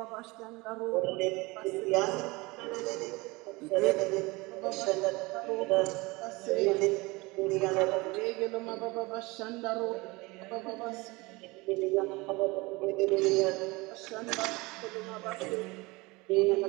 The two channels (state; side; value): quieter; left; 23.8 dB